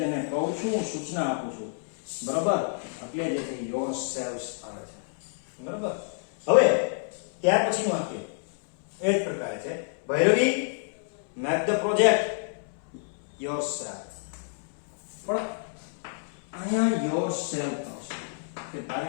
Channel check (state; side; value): silent; right; 59 dB below the other